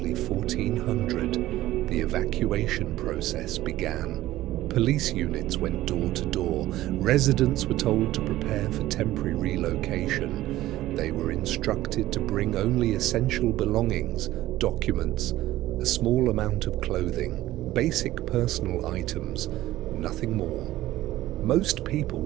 1400, the evacuation process began. Police units went door to door. Residents were told to prepare for temporary relocation. They were instructed to bring only essential belongings, documents, a small amount of clothing, basic personal items, nothing more. Most people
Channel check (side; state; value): left; quieter; 15.5 dB